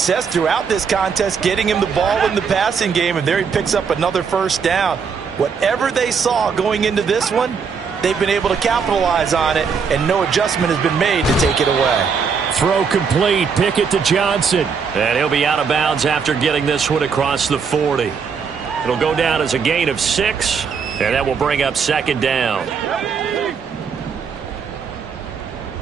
throughout this contest getting him the ball in the passing game, and there he picks up another first down. Whatever they saw going into this one, they've been able to capitalize on it, and no adjustment has been made to take it away. Throw complete. Pickett to Johnson. And he'll be out of bounds after getting this one across the 40. It'll go down as a gain of 6, and that will bring up 2nd down.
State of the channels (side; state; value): left; quieter; 6.0 dB